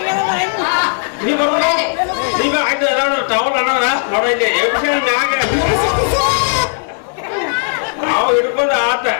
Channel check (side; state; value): right; silent; 69 dB below the other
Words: ನೀ ಬರ್ತಾರ ಈಗ ಆಯ್ತು ಎಲ್ಲಾರು ಟವಲ್ ಅನ್ನಾರ ನೋಡ ಇಲ್ಲಿ ಮ್ಯಾಗ ನಾವು ಹಿಡ್ಕೊಂಡು ಆತ